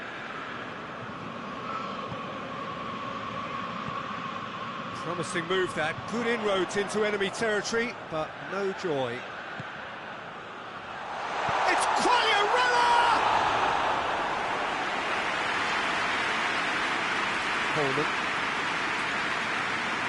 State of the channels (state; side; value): identical; both; correlation 1.00